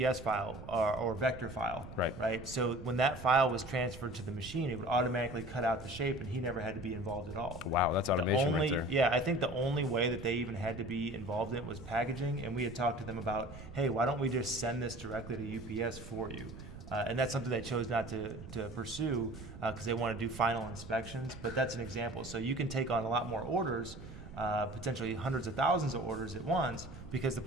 file or vector file. Right. So when that file was transferred to the machine, it would automatically cut out the shape, and he never had to be involved at all. Wow, that's automation right there. Yeah, I think the only way that they even had to be involved in it was packaging, and we had talked to them about, hey, why don't we just send this directly to UPS for you? And that's something they chose not to pursue because they want to do final inspections, but that's an example. So you can take on a lot more orders, potentially hundreds of thousands of orders at once because the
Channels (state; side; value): noise; right; rumble, 13 dB below the sound